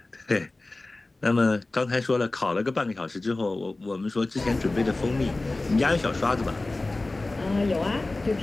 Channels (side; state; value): right; quieter; 3.0 dB